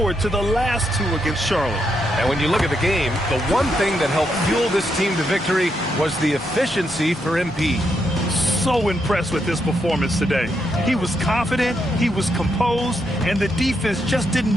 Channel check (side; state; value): both; normal; correlation 0.80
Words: to the last 2 against Charlotte. And when you look at the game, the one thing that helped fuel this team to victory was the efficiency for MP. So impressed with his performance today. He was confident, he was composed, and the defense just didn't